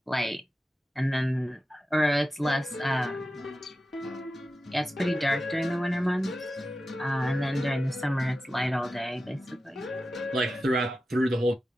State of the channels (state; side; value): normal; both; correlation 0.93